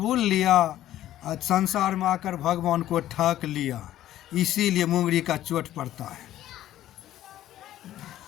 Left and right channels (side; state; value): right; quieter; 13.1 dB